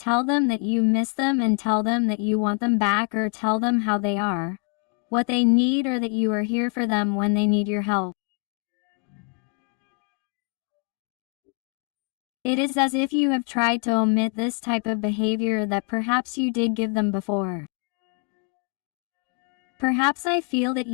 them that you miss them and tell them that you want them back, or tell them how they are, what they need, or that you are here for them when they need your help. It is as if you have tried to omit this type of behavior that perhaps you did give them before. Perhaps I feel that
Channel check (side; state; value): right; quieter; 35.5 dB